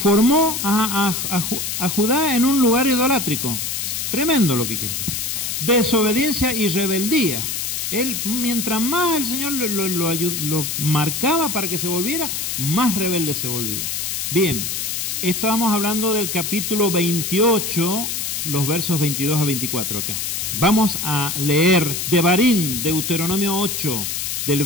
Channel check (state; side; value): noise; left; hiss, 2 dB below the sound